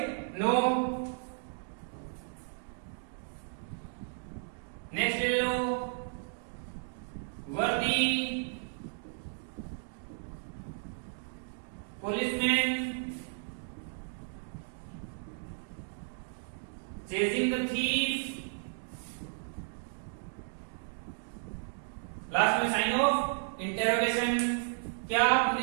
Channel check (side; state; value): left; silent; digital silence